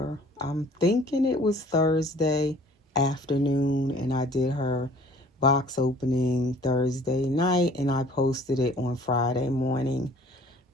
I'm thinking it was Thursday afternoon, and I did her box opening Thursday night, and I posted it on Friday morning.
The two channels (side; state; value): both; normal; correlation 0.52